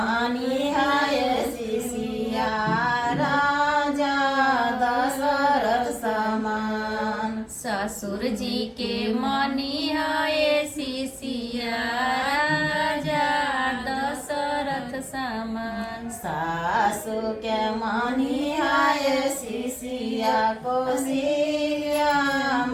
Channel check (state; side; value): identical; both; correlation 1.00